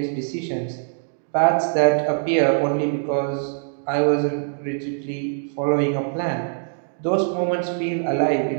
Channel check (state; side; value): silent; left; digital silence